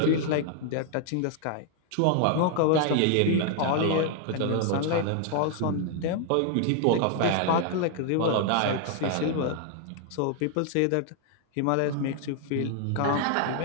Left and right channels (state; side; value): different; both; correlation 0.00